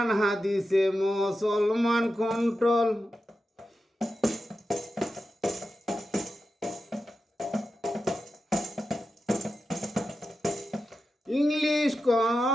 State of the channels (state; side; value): normal; both; correlation 0.90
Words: হাদিসে মুসলমান কন্ট্রোল ইংলিশ